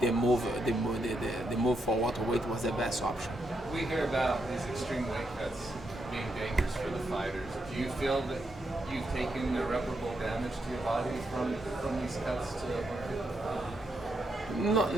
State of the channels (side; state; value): both; normal; correlation 0.81